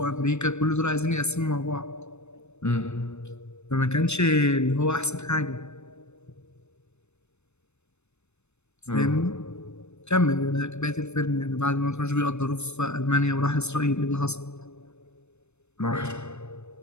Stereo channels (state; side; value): late; right; 0.81 ms